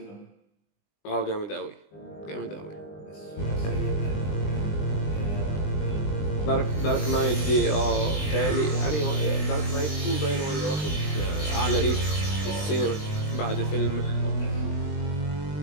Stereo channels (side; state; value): right; late; 20 ms